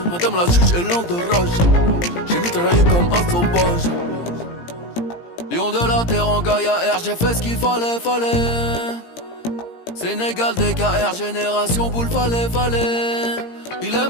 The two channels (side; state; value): right; late; 17 ms